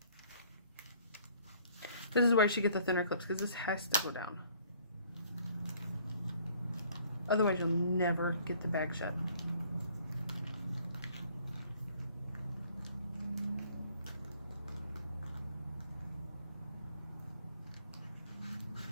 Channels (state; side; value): inverted; both; correlation -0.59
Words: This is why you should get the thinner clips, because this has to go down. Otherwise, you'll never get the bag shut.